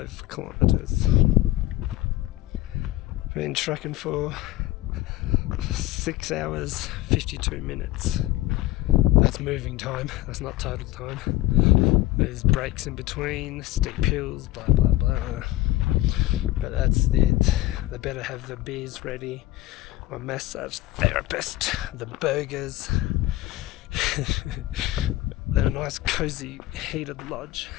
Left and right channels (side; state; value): right; quieter; 16.9 dB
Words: kilometres. Been trucking for 6 hours 52 minutes. That's moving time, that's not total time. There's breaks in between, steep hills, blah blah blah. But that's it. They better have the beers ready, my massage therapist, the burgers, then a nice cozy heated lodge.